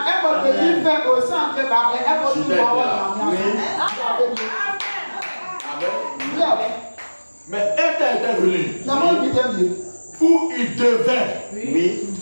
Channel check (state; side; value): inverted; both; correlation -1.00